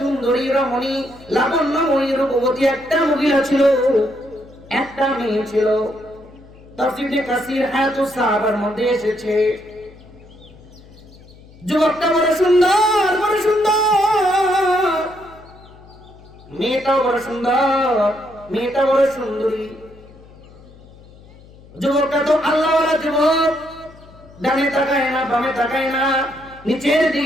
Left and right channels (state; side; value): noise; left; hum, 23 dB below the sound